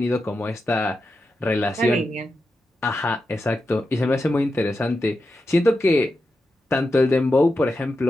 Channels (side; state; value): both; normal; correlation 0.89